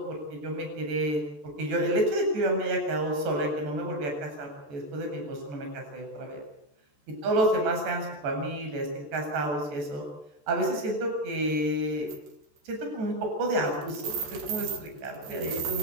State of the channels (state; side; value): late; left; 14 ms